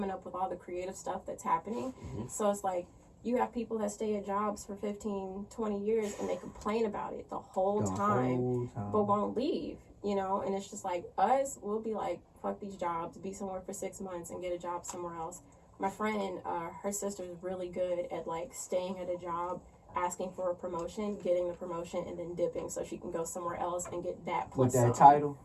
up with all the creative stuff that's happening. So it's like, you have people that stay at jobs for 15, 20 years and they complain about it the whole time, but won't leave, you know? And it's just like, us, we'll be like, fuck these jobs, be somewhere for 6 months and get a job somewhere else. My friend, her sister's really good at like staying at a job, asking for a promotion, getting the promotion, and then dipping so she can go somewhere else and get that plus with that some. title.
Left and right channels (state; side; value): identical; both; correlation 1.00